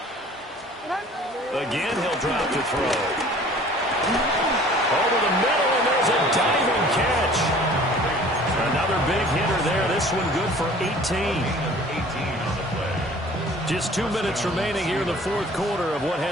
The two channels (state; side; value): normal; both; correlation 0.49